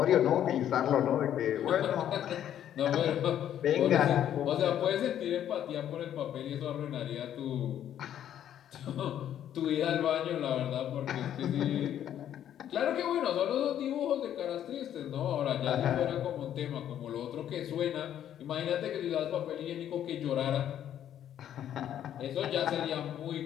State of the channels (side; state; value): right; quieter; 10.6 dB